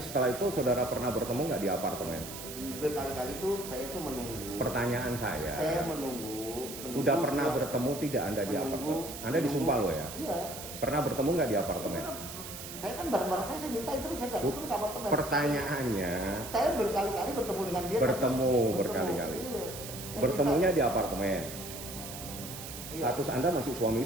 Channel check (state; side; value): noise; right; hiss, 10 dB below the sound